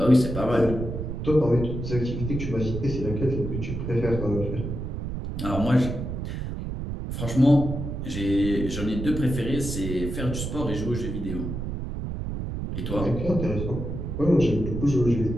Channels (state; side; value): noise; right; rumble, 5 dB below the sound